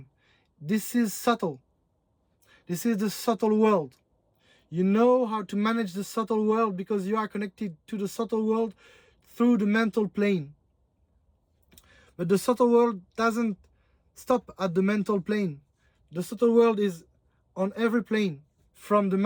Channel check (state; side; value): identical; both; correlation 1.00